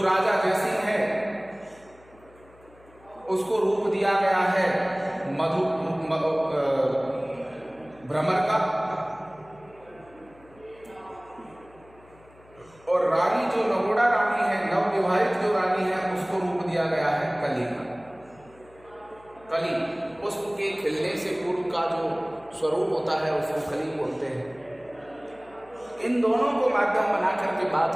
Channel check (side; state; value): left; noise; hum, 26 dB below the sound